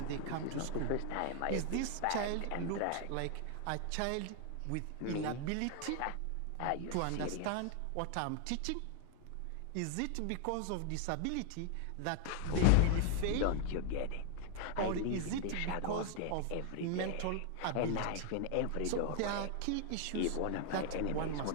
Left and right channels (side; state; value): both; different; correlation 0.00